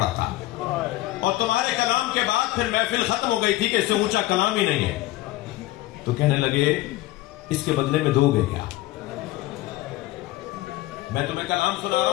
था, और तुम्हारे कलाम के बाद फिर महफिल खत्म हो गई थी कि इससे ऊंचा कलाम ही नहीं है, तो कहने लगे इसके बदले में दोगे क्या? मैं तुम्हें कलाम सुना रहा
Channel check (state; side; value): quieter; right; 17.5 dB